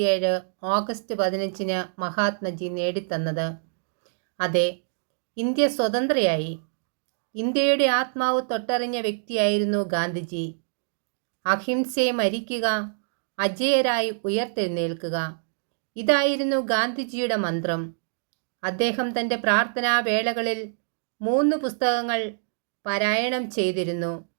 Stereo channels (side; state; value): left; silent; digital silence